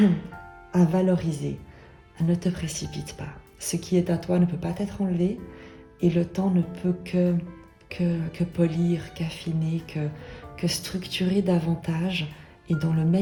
valoriser. Ne te précipite pas. Ce qui est à toi ne peut pas être enlevé et le temps ne peut que polir, qu'affiner, que structurer davantage et dans le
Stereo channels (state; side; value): identical; both; correlation 1.00